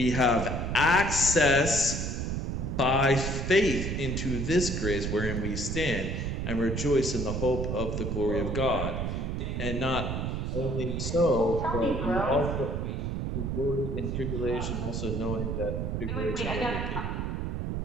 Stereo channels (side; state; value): right; noise; rumble, 2 dB below the sound